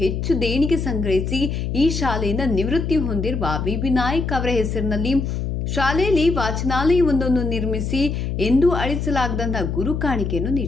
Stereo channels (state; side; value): noise; left; hum, 2 dB below the sound